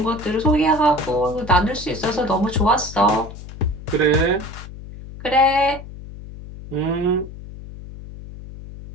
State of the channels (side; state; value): left; noise; hum, 14 dB below the sound